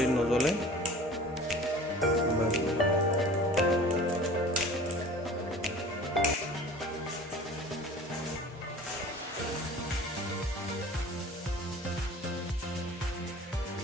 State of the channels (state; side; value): normal; both; correlation 0.43